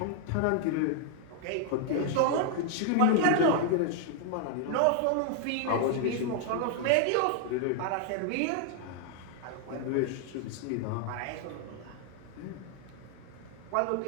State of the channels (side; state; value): both; different; correlation 0.00